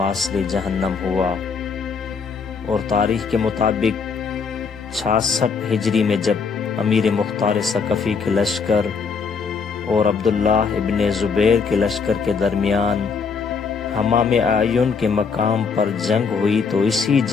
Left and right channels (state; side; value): quieter; right; 5.4 dB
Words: جہنم ہوا، اور تاریخ کے مطابق 66 ہجری میں جب امیر مختار ثقفی کے لشکر اور عبداللہ ابن زبیر کے لشکر کے درمیان حمام اعین کے مقام پر جنگ ہوئی تو اسی